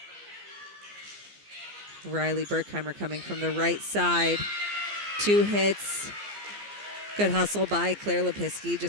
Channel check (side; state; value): left; late; 14 ms